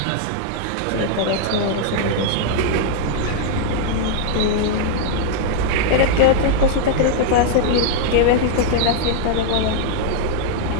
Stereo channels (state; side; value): different; both; correlation 0.00